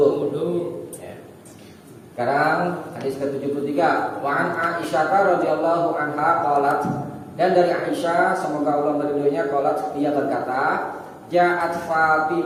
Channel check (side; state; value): both; identical; correlation 1.00